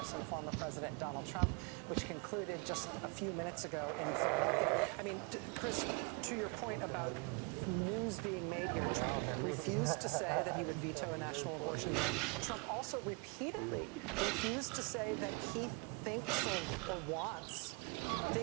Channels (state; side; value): quieter; left; 32.8 dB